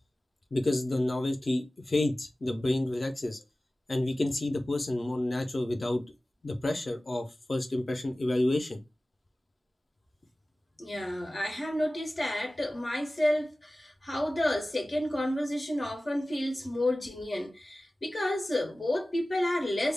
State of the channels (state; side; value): normal; both; correlation 0.97